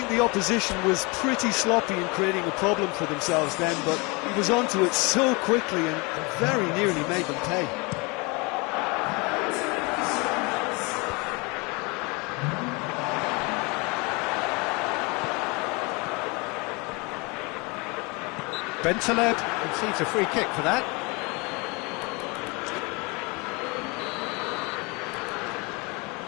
the opposition was pretty sloppy in creating a problem for themselves then, but he was onto it so quickly and very nearly made them pay. Bentaleb conceives a free kick for that.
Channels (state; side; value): quieter; right; 28.1 dB